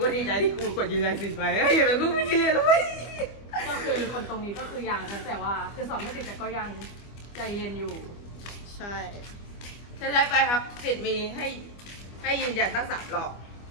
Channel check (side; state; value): right; late; 25 ms